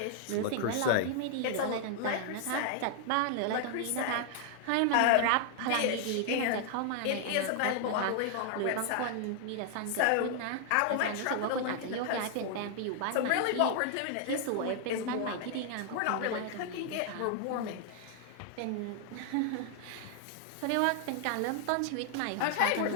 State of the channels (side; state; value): both; different; correlation 0.00